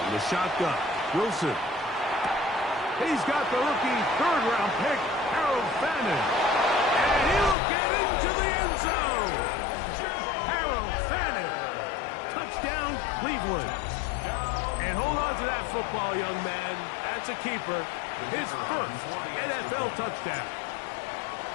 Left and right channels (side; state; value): right; drops out; at 7.6 s